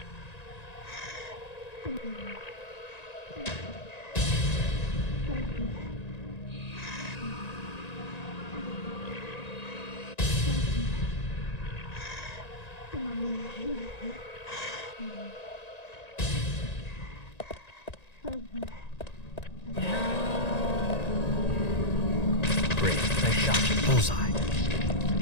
Great. Nice shot. Bullseye.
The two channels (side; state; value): right; late; 1.9 ms